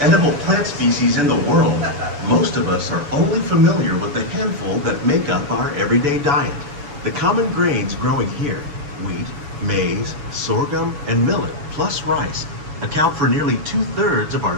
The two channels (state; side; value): late; left; 7.0 ms